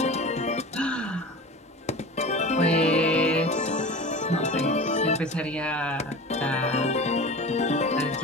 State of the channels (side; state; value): both; normal; correlation 0.34